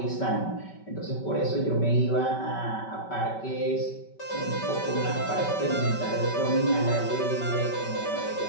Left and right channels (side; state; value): right; late; 5.2 ms